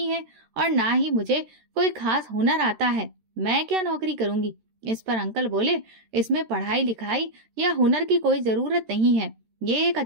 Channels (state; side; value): late; left; 13 ms